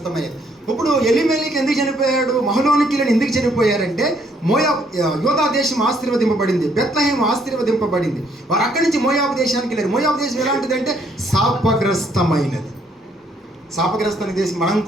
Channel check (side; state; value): both; normal; correlation 0.68